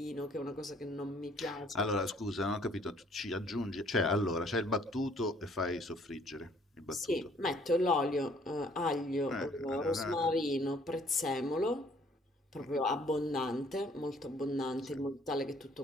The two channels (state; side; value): normal; both; correlation 0.61